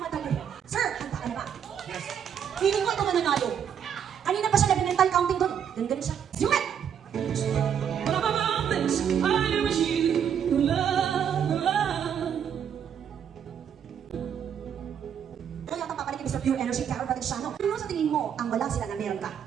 Sir, handa ka na ba? Yes. Feeling ko ito mananalo. Kanina pa siya nag-mental counting doon. Ganun siya. Zoom it! Ito yata papalitin Mr. Pure Energy, Carol Valenciano. Ano sa tingin mo ang wala sila na meron ka?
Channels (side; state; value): left; quieter; 8.4 dB